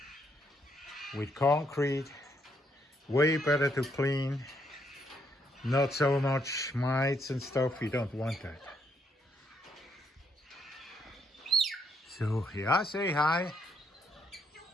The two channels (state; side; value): normal; both; correlation 0.73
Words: with concrete, way better to clean, not so much mites and stuff, we don't want that. So yeah, say hi.